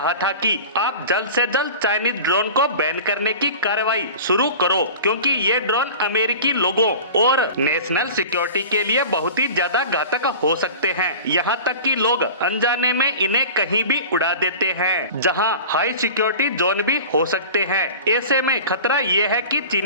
था कि आप जल्द से जल्द चाइनीज ड्रोन को बैन करने की कार्रवाई शुरू करो, क्योंकि ये ड्रोन अमेरिकी लोगों और नेशनल सिक्योरिटी के लिए बहुत ही ज्यादा घातक हो सकते हैं। यहाँ तक कि लोग अनजाने में इन्हें कहीं भी उड़ा देते हैं, जहाँ हाई सिक्योरिटी जोन भी हो सकते हैं। ऐसे में खतरा ये है कि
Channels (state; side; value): inverted; both; correlation -0.37